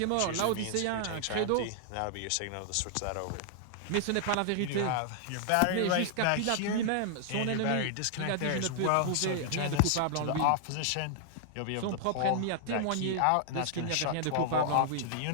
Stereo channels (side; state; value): both; different; correlation -0.01